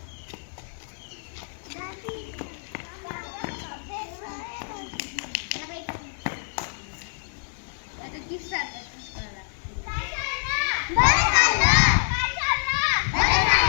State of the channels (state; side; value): silent; right; digital silence